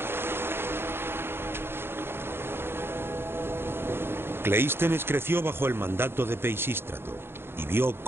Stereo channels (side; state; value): left; late; 0.11 ms